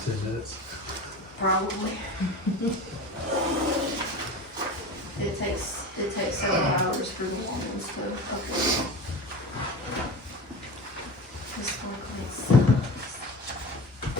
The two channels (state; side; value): normal; both; correlation 0.31